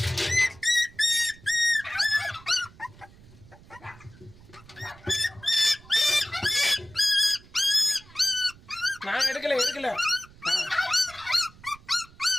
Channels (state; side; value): noise; right; rumble, 23 dB below the sound